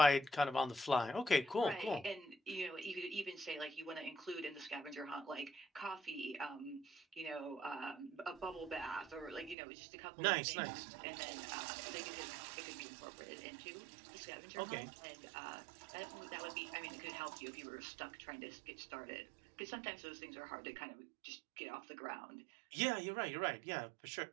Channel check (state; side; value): drops out; left; at 9.6 s